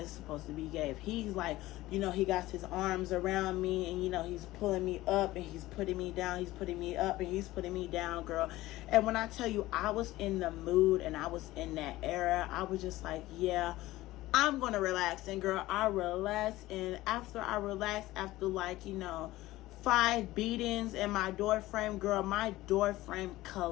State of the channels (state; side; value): quieter; right; 17.3 dB